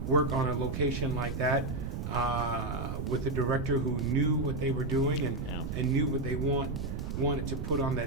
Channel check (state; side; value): noise; right; rumble, 4 dB below the sound